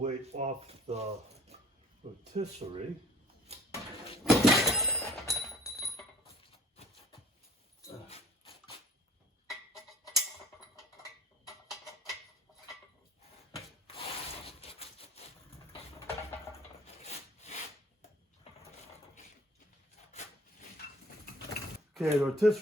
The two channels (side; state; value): both; normal; correlation 0.50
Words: off the rotisserie. Okay, the